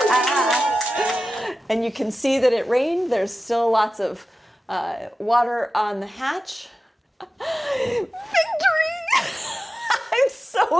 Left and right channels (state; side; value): normal; both; correlation 0.94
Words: And you can see that it rained. There's still lots of water on the hatch. Victory! I'm